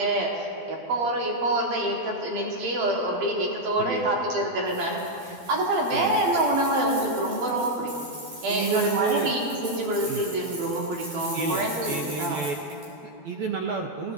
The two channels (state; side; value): late; left; 12 ms